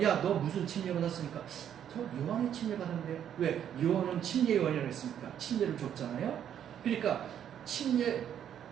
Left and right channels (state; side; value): quieter; left; 9.6 dB